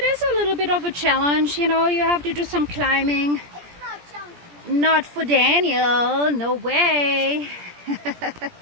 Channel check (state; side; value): late; left; 17 ms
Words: is a little bit of a challenge, you know, you have to do some climbing. It's not chunky. Not for Daniel, no way.